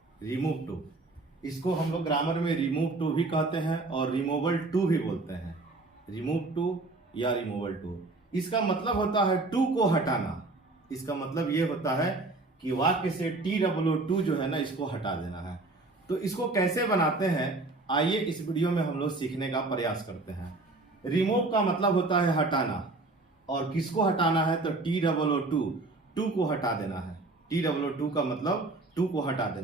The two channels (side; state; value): left; quieter; 3.2 dB